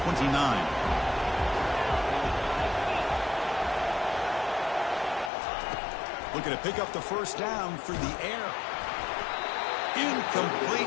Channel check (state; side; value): drops out; right; at 5.3 s